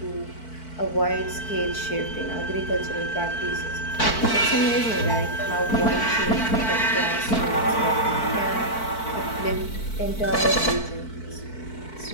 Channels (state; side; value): late; right; 4.5 ms